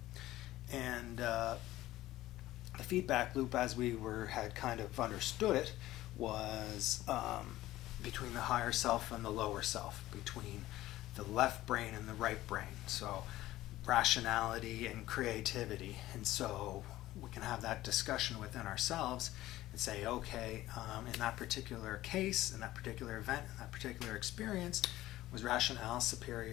And the feedback loop, as we had kind of understood it, was between the higher self and the lower self, between the left brain and the right brain. So rationality and creativity. And so we can have that discussion within ourselves and say, okay, in that particular case, in that particular event, in that particular experience, was rationale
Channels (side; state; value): right; quieter; 15.9 dB